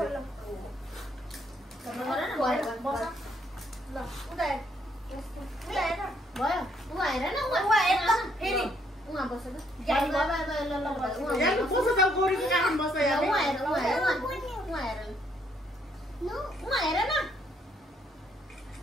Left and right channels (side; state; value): both; normal; correlation 0.70